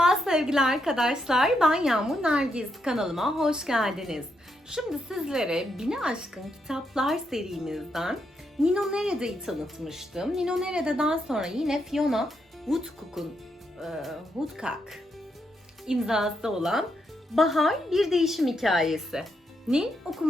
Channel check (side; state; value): both; normal; correlation 0.80